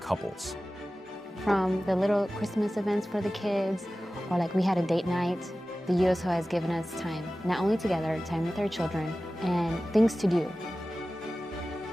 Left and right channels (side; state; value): both; normal; correlation 0.96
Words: From the little Christmas events for the kids, or like we had a date night, the USO has given us time, not only together, time with our children, and things to do.